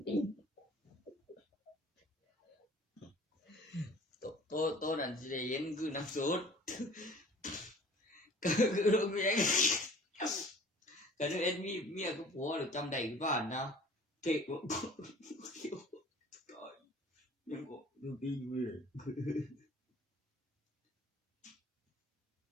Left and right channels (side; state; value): both; normal; correlation 0.47